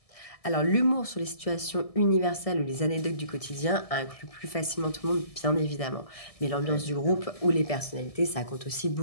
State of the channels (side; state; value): right; late; 1.7 ms